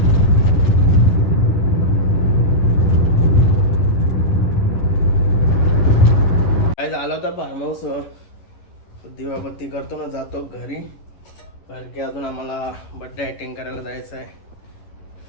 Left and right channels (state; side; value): late; right; 10 ms